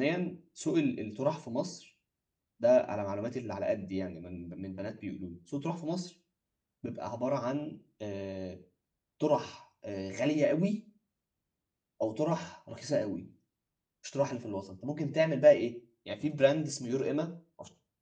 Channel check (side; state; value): both; identical; correlation 1.00